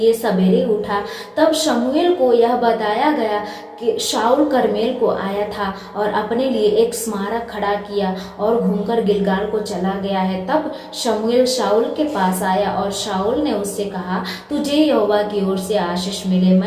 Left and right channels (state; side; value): identical; both; correlation 1.00